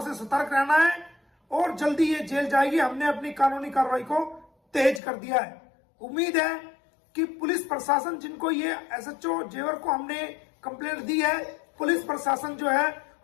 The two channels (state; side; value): drops out; right; at 5.0 s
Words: से सतर्क रहना है, और जल्दी ये जेल जाएगी। हमने अपनी कानूनी कार्रवाई को तेज कर दिया है। उम्मीद है कि पुलिस प्रशासन, जिनको ये एसएचओ जेवर को हमने कंप्लेंट दी है, पुलिस प्रशासन जो है